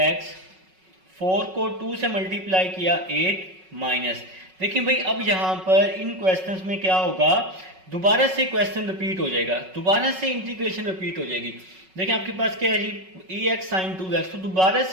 4 को 2 से मल्टीप्लाई किया 8, माइनस। देखिए भाई अब यहाँ पर इन क्वेश्चंस में क्या होगा, दोबारा से क्वेश्चन रिपीट हो जाएगा, दोबारा से इंटीग्रेशन रिपीट हो जाएगी। देखिए आपके पास क्या है जी, EX sin 2x, तो दोबारा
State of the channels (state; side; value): late; left; 5.4 ms